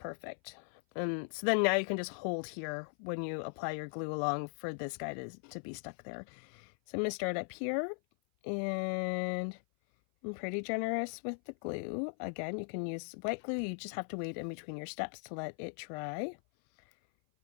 So then now you can just hold here when you apply your glue along for this guy to be stuck there. So I'm going to start up here, and I'm pretty generous with the glue. Again, you can use white glue. You just have to wait in between your steps to let it dry.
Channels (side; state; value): right; silent; 52 dB below the other